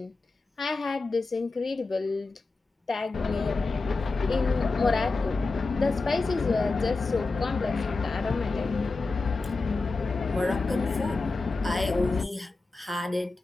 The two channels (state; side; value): quieter; right; 3.7 dB